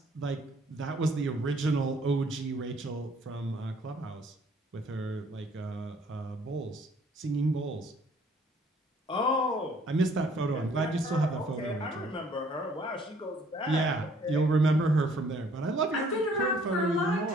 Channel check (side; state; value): both; normal; correlation 0.60